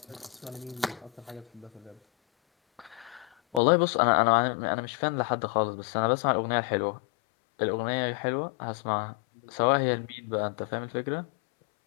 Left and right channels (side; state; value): right; drops out; at 3.6 s